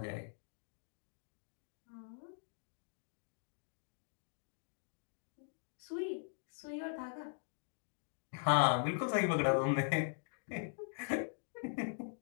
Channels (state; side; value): silent; right; digital silence